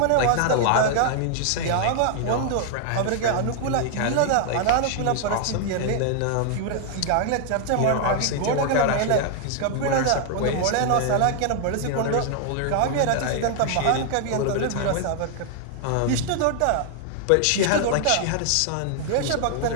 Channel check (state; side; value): different; both; correlation 0.00